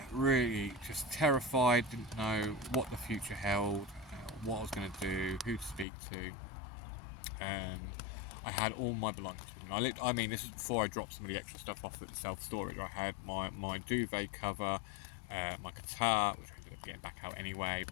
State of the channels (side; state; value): right; drops out; at 5.9 s